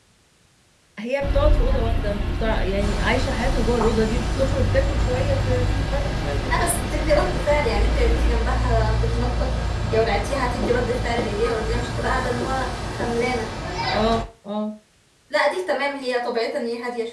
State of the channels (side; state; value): both; identical; correlation 1.00